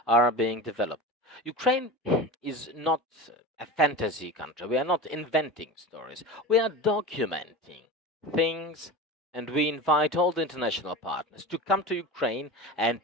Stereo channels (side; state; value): both; normal; correlation 0.30